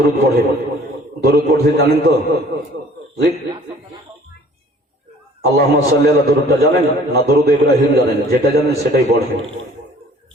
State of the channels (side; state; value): both; normal; correlation 0.53